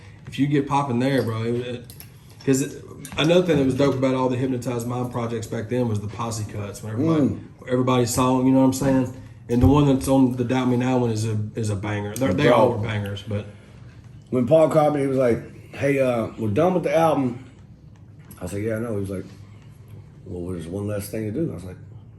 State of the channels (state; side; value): identical; both; correlation 1.00